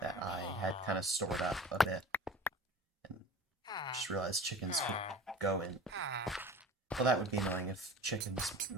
I had kind of stored up a bit, and just realized chickens could go in. Well, that would be annoying if chickens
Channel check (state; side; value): normal; both; correlation 0.39